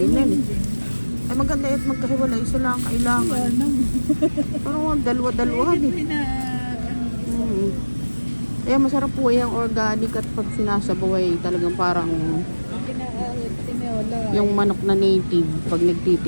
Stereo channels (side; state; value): both; inverted; correlation -1.00